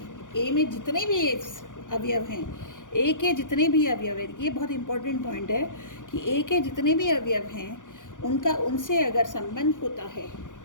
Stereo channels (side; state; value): right; late; 0.87 ms